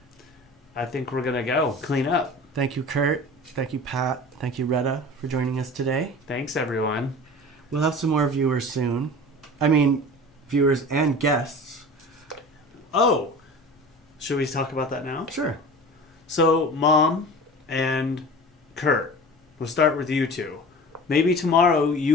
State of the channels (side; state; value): both; normal; correlation 0.37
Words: I think we're going to go. Clean up. Thank you, Kurt. Thank you, Pat. Thank you, Retta, for joining us today. Thanks, everyone. We'll have some more viewers soon. I mean, viewers and guests. Oh, should we talk about that now? Sure. So, Mom and Kurt, we'll start with you two. Maybe tomorrow